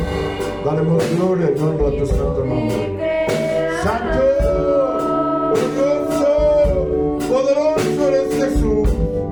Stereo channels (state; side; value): identical; both; correlation 1.00